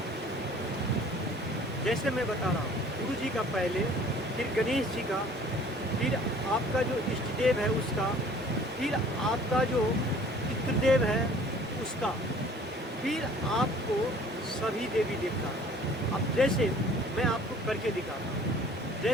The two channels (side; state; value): both; normal; correlation 0.52